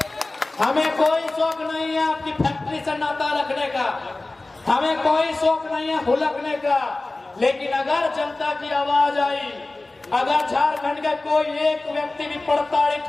हमें कोई शौक नहीं है आपकी फैक्ट्री से नाता रखने का, हमें कोई शौक नहीं है हुलकने का। लेकिन अगर जनता की आवाज आई, अगर झारखंड का कोई एक व्यक्ति भी प्रताड़ित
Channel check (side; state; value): right; quieter; 3.0 dB